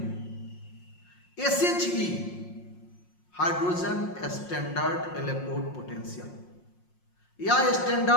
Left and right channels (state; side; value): late; right; 5.6 ms